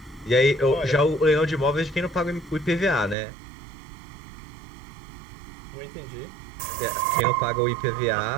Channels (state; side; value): drops out; left; at 3.2 s